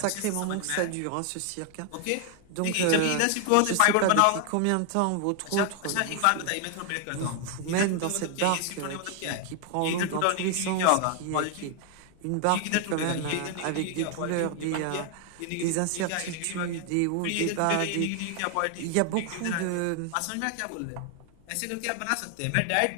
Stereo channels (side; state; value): both; different; correlation 0.00